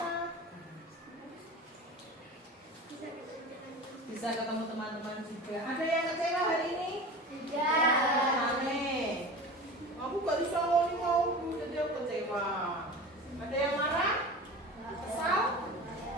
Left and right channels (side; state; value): both; normal; correlation 0.34